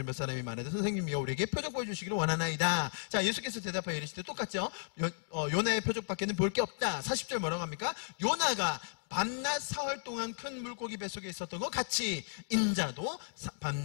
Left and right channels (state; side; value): silent; right; digital silence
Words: 몇 사람이 말하되 선생님이여 우리에게 표적 보여주시기를 원하나이다. 자, 예수께서 대답하여 이르시되 똑같죠? 요나의 표적밖에는 볼 게 없다. 40절 뭐라고 합니까? 요나가 밤낮 사흘 동안 큰 물고기 뱃속에 있었던 것 같이 인자도